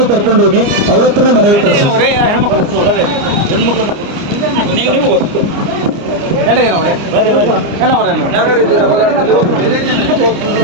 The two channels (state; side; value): late; left; 29 ms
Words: ಕರ್ಕೊಂಡು ಹೋಗಿ ಅವ್ರ ಹತ್ರನೇ ಮನವಿ ಕೊಡಿಸಿ.